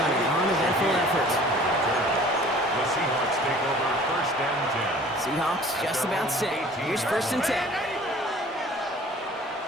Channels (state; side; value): normal; both; correlation 0.49